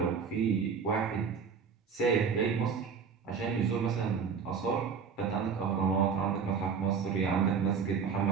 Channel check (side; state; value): left; quieter; 6.2 dB